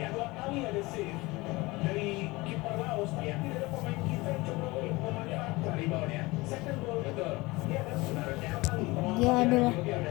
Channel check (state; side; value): quieter; right; 22.3 dB